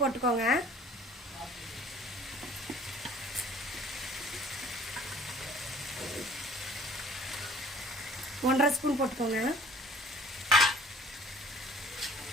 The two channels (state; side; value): normal; both; correlation 0.51